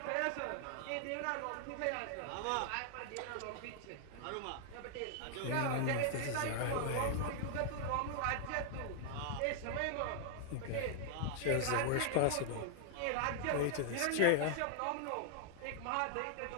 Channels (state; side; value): different; both; correlation 0.00